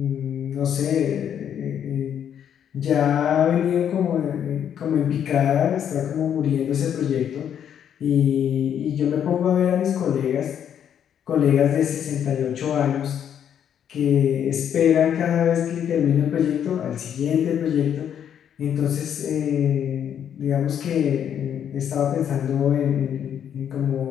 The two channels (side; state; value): right; quieter; 9.0 dB